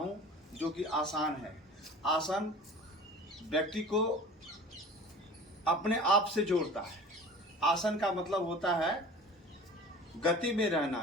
जो कि आसान है। आसन व्यक्ति को अपने आप से जोड़ता है। आसन का मतलब होता है गति में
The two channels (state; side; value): normal; both; correlation 0.41